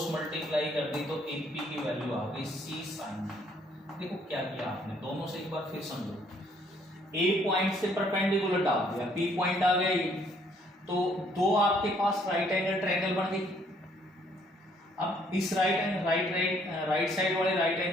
multiply कर दी तो ए पी की वैल्यू आ गई सी साइन बी। देखो क्या किया आपने, दोनों से एक बार फिर समझो, ए पॉइंट से परपेंडिकुलर डाल दिया, बी पॉइंट आ गया ये, तो दो आपके पास राइट एंगल ट्रायंगल बन गई। अब इस राइट साइड वाले राइट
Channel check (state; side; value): normal; both; correlation 0.65